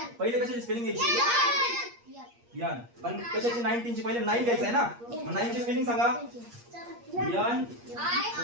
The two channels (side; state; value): left; late; 8.5 ms